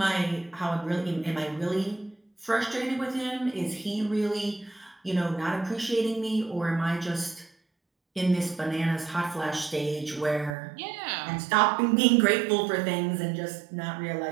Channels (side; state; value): left; drops out; at 10.6 s